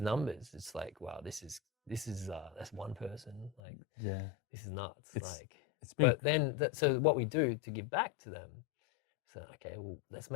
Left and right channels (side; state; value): right; drops out; at 3.6 s